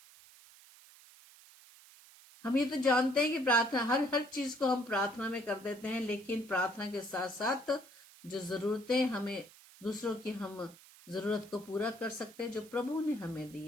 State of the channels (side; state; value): right; noise; hiss, 22 dB below the sound